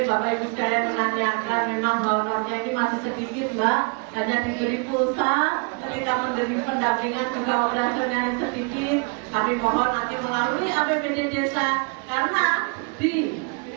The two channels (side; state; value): left; quieter; 34.7 dB